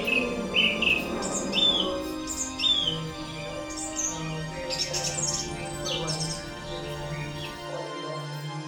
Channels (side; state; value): both; identical; correlation 1.00